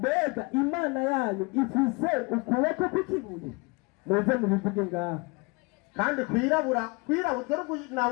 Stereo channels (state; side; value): quieter; right; 27.9 dB